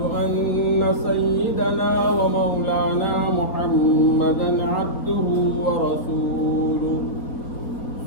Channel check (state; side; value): late; right; 4.4 ms